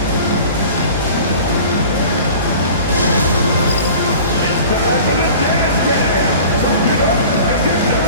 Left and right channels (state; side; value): inverted; both; correlation -0.42